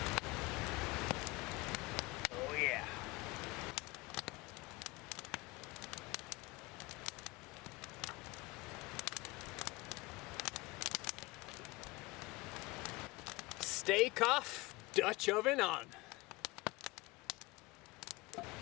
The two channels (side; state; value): right; quieter; 22.6 dB